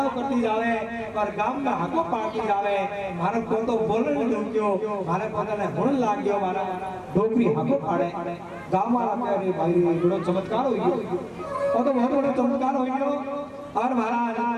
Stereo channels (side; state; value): both; identical; correlation 1.00